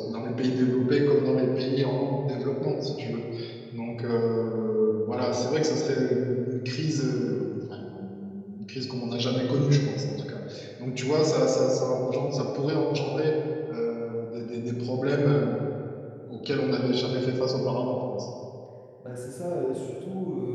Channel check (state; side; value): identical; both; correlation 1.00